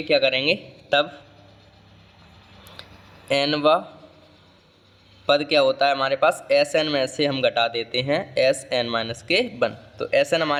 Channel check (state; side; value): identical; both; correlation 1.00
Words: क्या करेंगे, तब n व पद क्या होता है हमारे पास, Sn में से हम घटा देते हैं Sn माइनस के 1। तो Sn